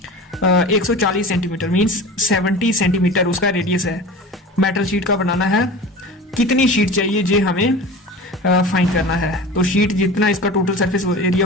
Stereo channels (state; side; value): normal; both; correlation 0.35